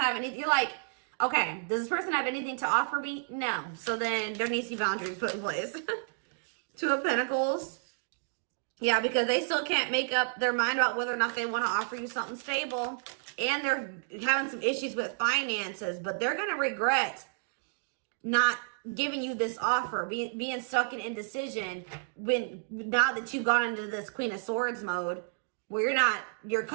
anything. You're like, okay, does this person have anything to offer me? No. So then there needs to be boundaries put in place. Two of Pentacles. Yeah, because they still can't make up their mind about whether or not they want to offer you something stable. And they're having some issues with finances. But they're going to regret not giving you this offer, being stuck in indecision now that you've gone into this Queen of Swords mode, where you're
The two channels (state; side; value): silent; left; digital silence